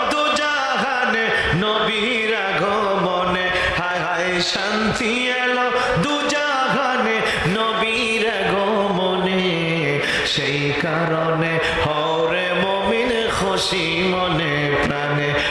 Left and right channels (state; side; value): identical; both; correlation 1.00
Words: দুজাহানে নবীর আগমনে, হায় হায় শান্তি এলো দুজাহানে নবীর আগমনে। সেই কারণে হওরে মুমিন খুশি মনে প্রাণে,